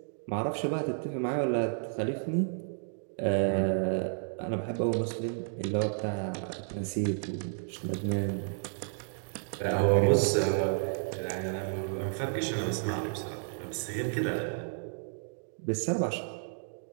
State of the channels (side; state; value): left; silent; digital silence